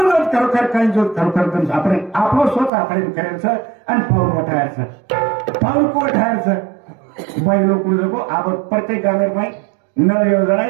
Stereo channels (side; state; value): left; drops out; at 2.7 s